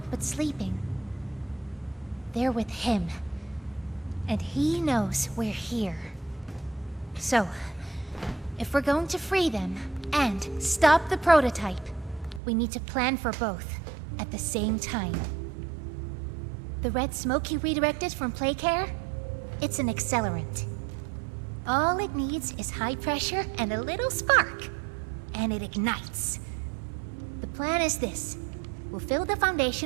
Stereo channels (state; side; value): drops out; left; at 12.4 s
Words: but sleeping. They're with him. And he knows we're here. So, if we're going to free them, and stop the prototype, we need to plan for both, at the same time. The red smoke he redirected from Playcare? It's an accelerant. All it needs is high pressure and a little spark, and it ignites. The plan is this. We'll fill the